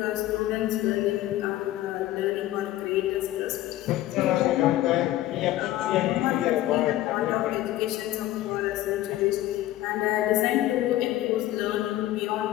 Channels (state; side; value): quieter; right; 14.9 dB